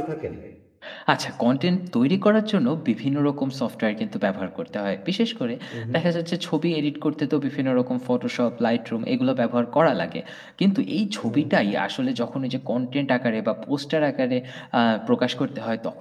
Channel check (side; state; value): both; identical; correlation 1.00